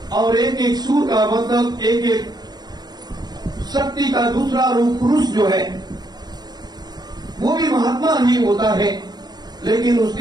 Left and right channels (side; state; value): left; late; 0.20 ms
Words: और एक एक सूर का मतलब एक एक शक्ति का दूसरा रूप पुरुष जो है वो भी महात्मा ही होता है, लेकिन